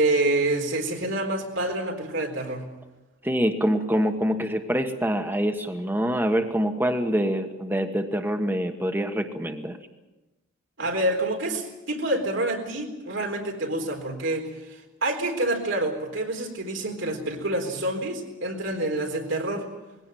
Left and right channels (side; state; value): both; normal; correlation 0.36